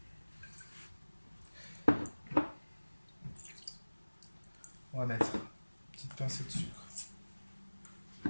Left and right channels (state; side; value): inverted; both; correlation -1.00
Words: On va mettre une petite pincée de sucre,